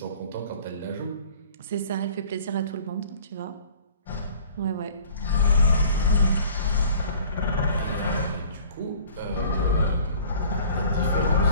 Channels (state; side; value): inverted; both; correlation -0.48